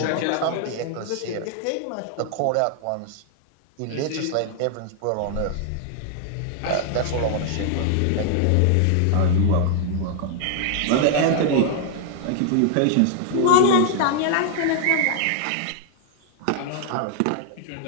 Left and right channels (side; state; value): both; different; correlation 0.00